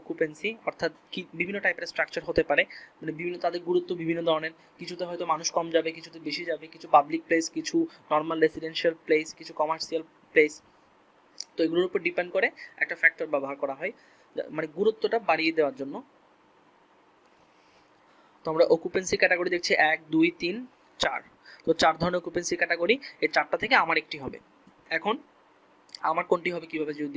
অকুপেন্সি, অর্থাৎ কি বিভিন্ন টাইপের স্ট্রাকচার হতে পারে, মানে বিভিন্ন তাদের গুরুত্ব বিভিন্ন ধরনের, কিছুতে হয়তো মানুষ কম যাবে, কিছুতে বেশি যাবে, কিছু পাবলিক প্লেস, কিছু নর্মাল রেসিডেন্সিয়াল প্লেস, কিছু কমার্শিয়াল প্লেস। তো এগুলোর উপর ডিপেন্ড করে একটা ফ্যাক্টর ব্যবহার করা হয়, মানে গুরুত্বটা বাড়িয়ে দেওয়ার জন্য। তো আমরা অকুপেন্সি ক্যাটাগরি দেখছি 1 2 3 4, তো 4 ধরনের অকুপেন্সি ক্যাটাগরি, এই 4টা থেকে আমার একটি হবে। এখন আমার কোনটি হবে কিভাবে যদি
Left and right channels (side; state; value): both; identical; correlation 1.00